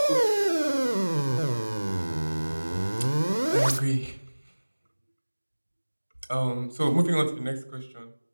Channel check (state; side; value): inverted; both; correlation -1.00